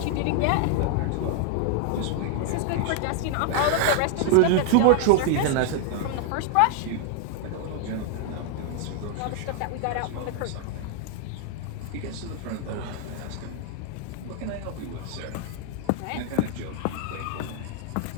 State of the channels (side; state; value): both; different; correlation 0.00